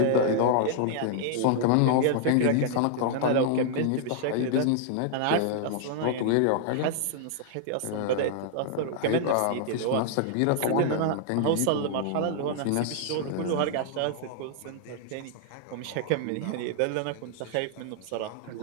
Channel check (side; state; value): both; different; correlation -0.01